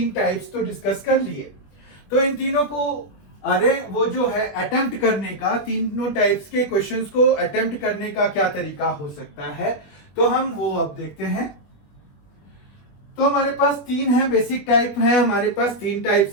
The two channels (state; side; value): late; right; 20 ms